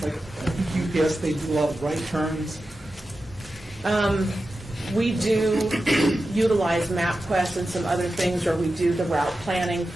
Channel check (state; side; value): normal; both; correlation 0.92